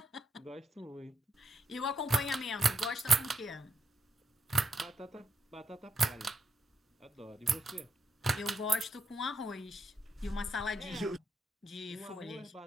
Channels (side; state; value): both; normal; correlation 0.81